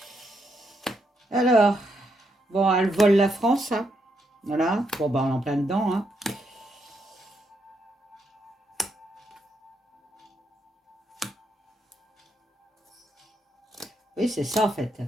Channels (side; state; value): both; normal; correlation 0.79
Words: Alors, bon, elle vole la France. Hein. Voilà. Bon, ben, on est en plein dedans. Hein. Oui, c'est ça en fait.